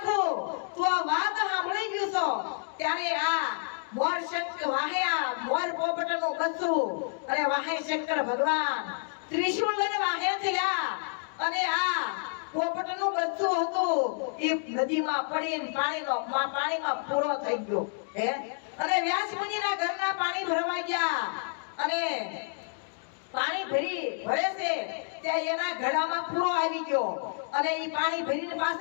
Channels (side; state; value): right; silent; digital silence